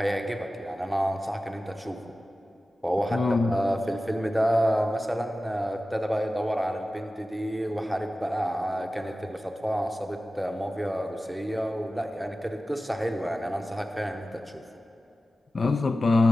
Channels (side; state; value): both; normal; correlation 0.95